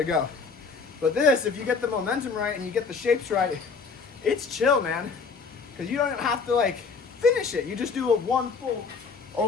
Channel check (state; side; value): quieter; right; 5.0 dB